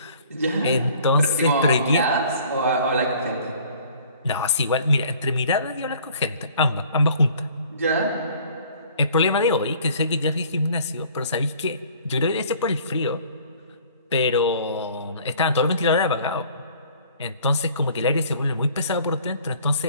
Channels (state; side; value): inverted; both; correlation -0.53